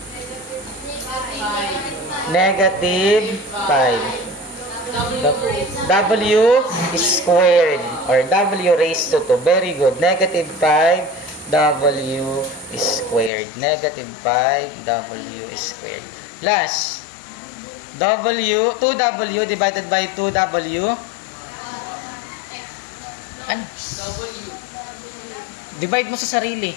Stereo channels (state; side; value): drops out; right; at 13.3 s